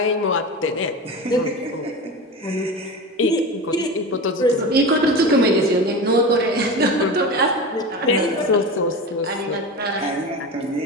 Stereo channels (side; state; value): both; normal; correlation 0.27